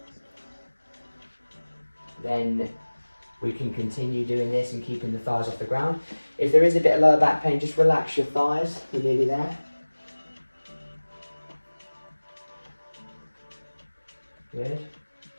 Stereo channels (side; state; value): both; inverted; correlation -1.00